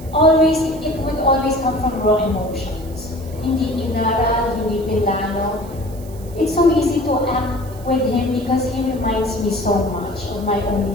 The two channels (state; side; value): noise; right; hiss, 22 dB below the sound